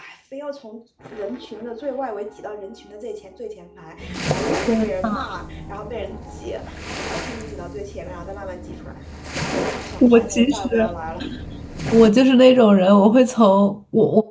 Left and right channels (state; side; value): identical; both; correlation 1.00